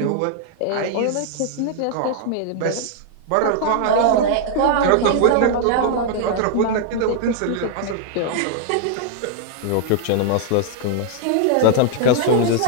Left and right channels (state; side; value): different; both; correlation -0.01